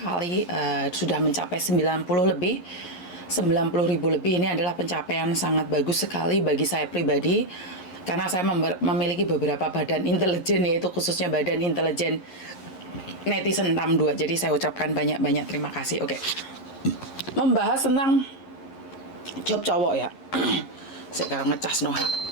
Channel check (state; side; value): late; right; 11 ms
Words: sudah mencapai 90 lebih, 90.000 lebih. Ini adalah pencapaian sangat bagus sekali bagi saya pribadi, karena saya memiliki beberapa badan intelijen, yaitu khususnya badan intelijen netizen 62. Jadi saya ucapkan banyak-banyak terima kasih. Oke, membahas tentang job cowok ya. Sekarang ngecas no